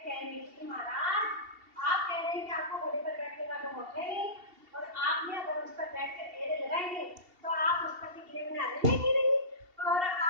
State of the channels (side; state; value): left; late; 2.7 ms